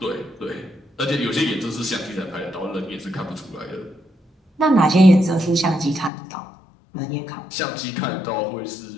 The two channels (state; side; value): drops out; right; at 6.1 s